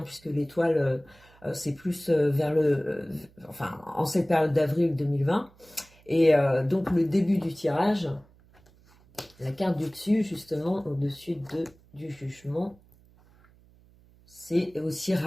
puisque l'étoile, c'est plus vers enfin, en cette période d'avril 2020. Et donc le début du tirage, la carte du dessus, justement, au-dessus du jugement, c'est aussi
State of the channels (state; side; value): noise; right; hum, 28 dB below the sound